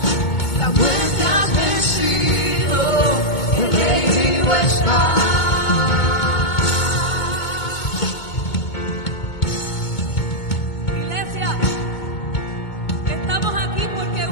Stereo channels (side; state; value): right; late; 2.2 ms